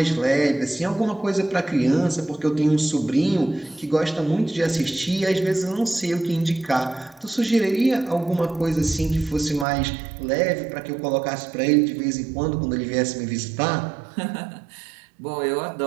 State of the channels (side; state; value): left; drops out; at 9.7 s